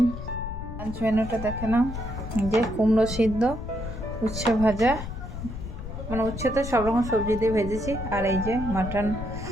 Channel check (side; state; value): left; noise; rumble, 8 dB below the sound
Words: লাঞ্চ মেনুটা দেখে নাও। যে কুমড়ো সিদ্ধ, উচ্ছে ভাজা, মানে উচ্ছে তো সব রকম সবজি দিয়ে ভেজেছি। আর এই যে মাটন